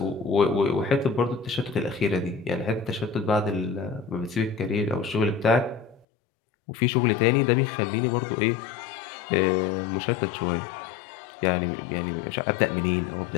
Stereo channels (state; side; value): drops out; right; at 6.1 s